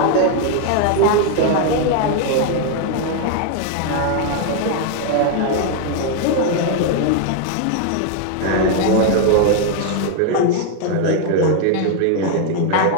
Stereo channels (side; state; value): both; different; correlation 0.00